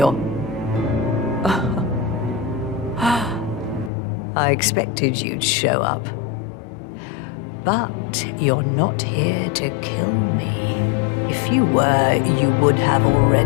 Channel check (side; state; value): right; drops out; at 3.9 s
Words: I expected you'd show up. But you're not here to kill me. If you were, you would have